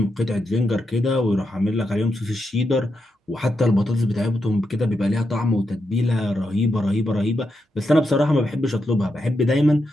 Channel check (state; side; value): normal; both; correlation 0.85